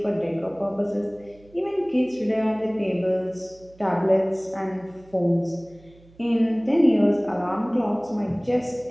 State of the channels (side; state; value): right; noise; hum, 27 dB below the sound